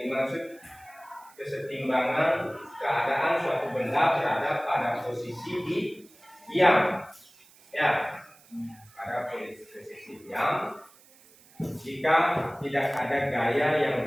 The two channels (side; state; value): right; noise; hiss, 26 dB below the sound